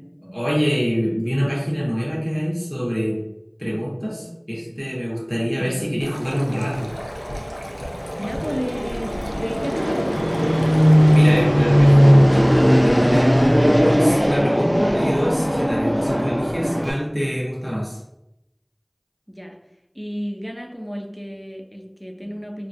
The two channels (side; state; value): both; identical; correlation 1.00